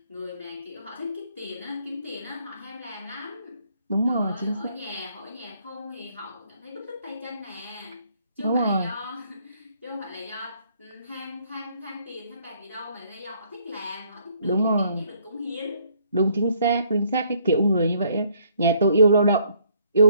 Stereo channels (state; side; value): inverted; both; correlation -0.66